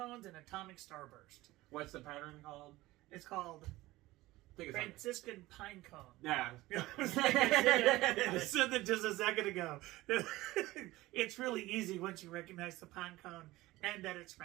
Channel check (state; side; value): quieter; left; 18.3 dB